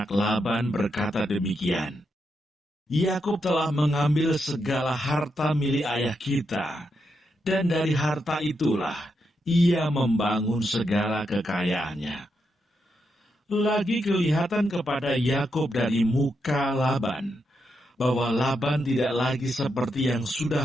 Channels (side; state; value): both; normal; correlation 0.83